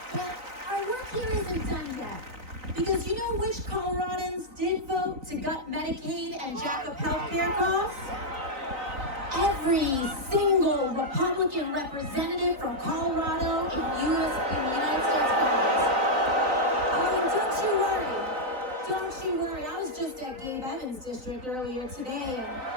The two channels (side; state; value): left; late; 3.9 ms